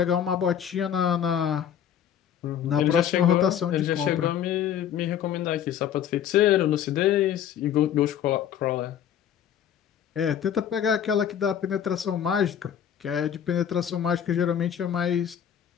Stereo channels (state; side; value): quieter; right; 9.4 dB